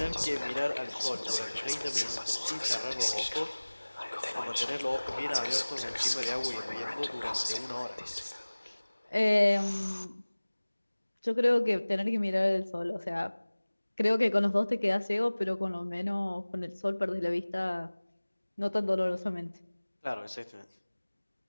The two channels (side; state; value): both; inverted; correlation -1.00